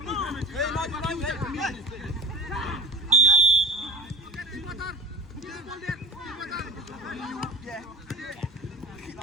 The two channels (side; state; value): both; normal; correlation 0.40